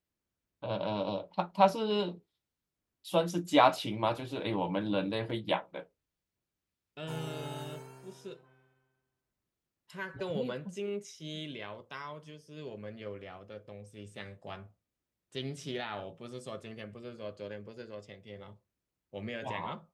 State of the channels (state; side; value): identical; both; correlation 1.00